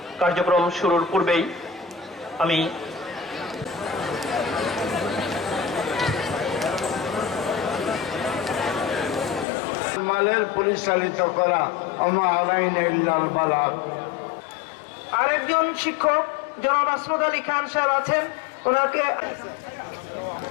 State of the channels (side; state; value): right; drops out; at 9.5 s